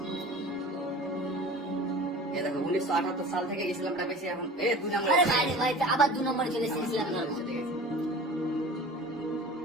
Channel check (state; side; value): normal; both; correlation 0.39